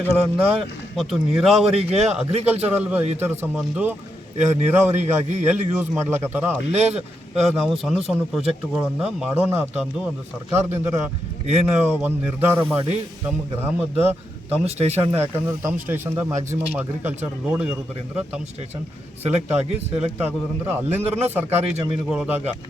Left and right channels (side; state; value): both; normal; correlation 0.83